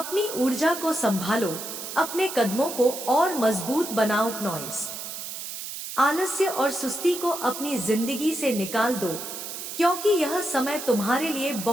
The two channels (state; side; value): noise; right; hiss, 8 dB below the sound